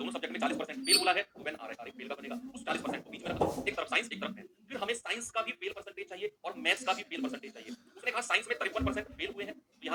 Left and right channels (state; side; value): identical; both; correlation 1.00